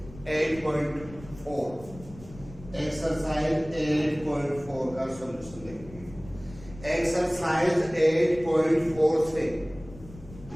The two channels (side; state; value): left; noise; rumble, 18 dB below the sound